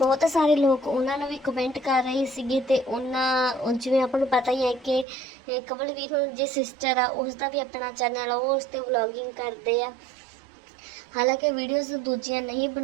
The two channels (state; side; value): drops out; left; at 5.1 s